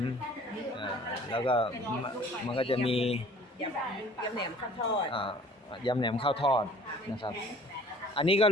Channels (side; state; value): both; normal; correlation 0.51